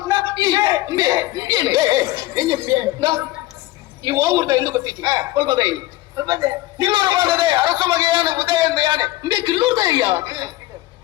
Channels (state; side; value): quieter; right; 17.3 dB